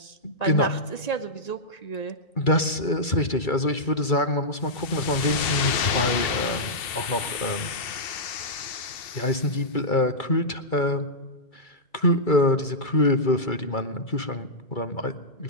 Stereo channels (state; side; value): late; right; 2.7 ms